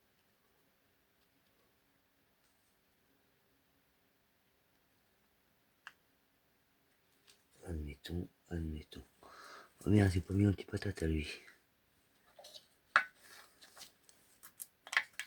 Admettons. Oh merde, j'ai pas mis un petit patate à lui.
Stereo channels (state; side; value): identical; both; correlation 1.00